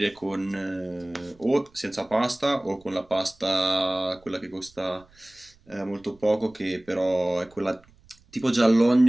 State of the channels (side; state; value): right; noise; rumble, 29 dB below the sound